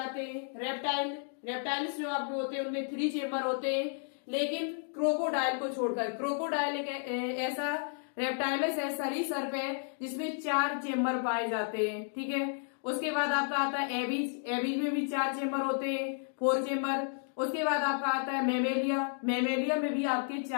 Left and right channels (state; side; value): silent; right; 56 dB below the other